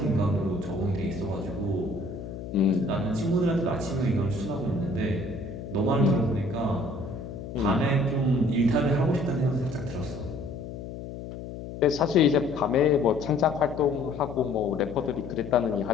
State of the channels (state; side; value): noise; left; hum, 10 dB below the sound